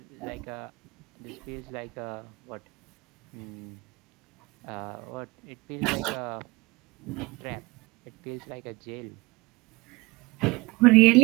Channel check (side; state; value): left; quieter; 23.9 dB